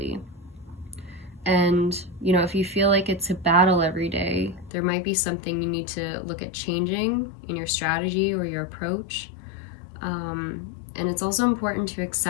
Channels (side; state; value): right; drops out; at 4.7 s